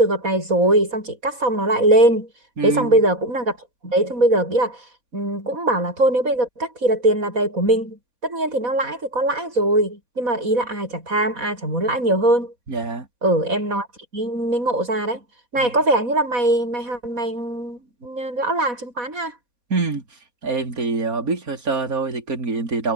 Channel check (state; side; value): late; left; 4.1 ms